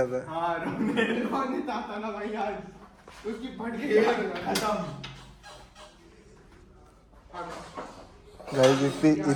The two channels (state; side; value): identical; both; correlation 1.00